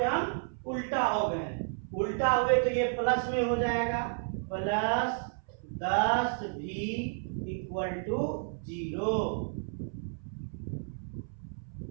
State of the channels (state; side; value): silent; left; 56 dB below the other